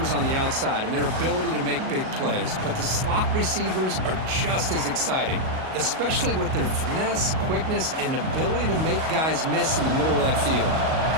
on the outside and their ability to make big plays, but the slot receivers are just as exciting, especially with their finesse, quickness, and ability to make guys miss in the middle of that field.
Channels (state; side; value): late; left; 38 ms